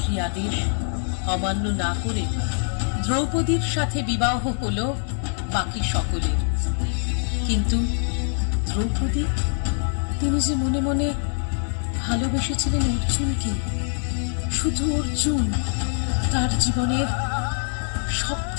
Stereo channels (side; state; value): right; silent; 63 dB below the other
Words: আদেশ অমান্য না করে দ্রৌপদীর সাথে বিবাহ হলো বাকি সকলের। কিন্তু দ্রৌপদী, তিনি যে মনে মনে ভালোবেসেছিলেন অর্জুনকে, শুধু অর্জুন, তার জীবনের সব